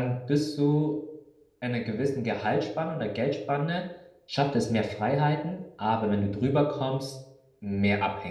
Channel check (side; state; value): both; identical; correlation 1.00